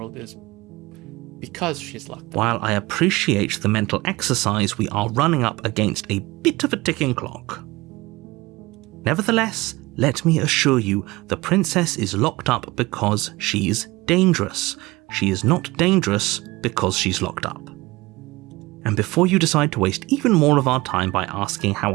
is because she's locked up? While I appreciate the mental exercise, we are running up against a bit of a ticking clock. Nevertheless, let me assure you, the princess is locked up because she's dangerous. She is not dangerous because she's locked up. And before you decide to waste even more of our time by asking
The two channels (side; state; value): left; quieter; 21.1 dB